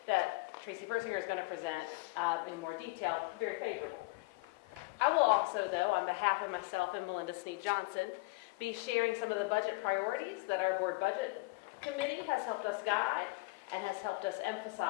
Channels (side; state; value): right; quieter; 24.3 dB